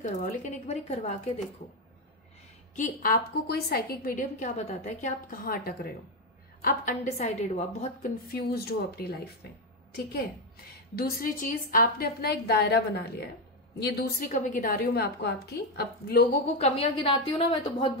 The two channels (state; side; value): normal; both; correlation 0.08